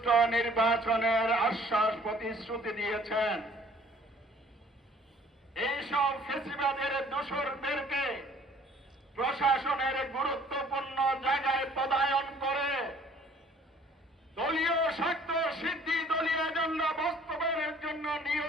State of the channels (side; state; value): both; normal; correlation 0.56